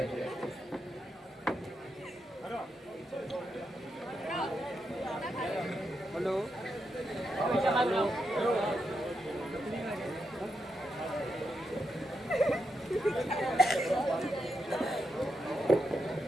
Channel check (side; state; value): both; normal; correlation 0.84